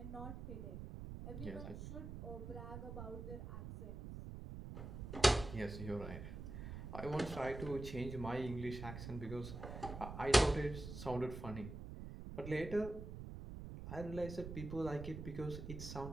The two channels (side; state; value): right; noise; rumble, 8 dB below the sound